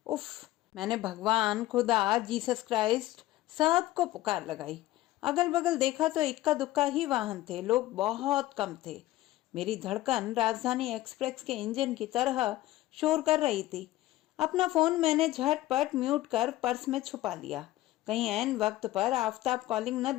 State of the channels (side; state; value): right; quieter; 16.2 dB